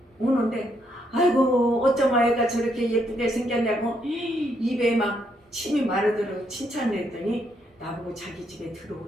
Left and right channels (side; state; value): both; normal; correlation 0.75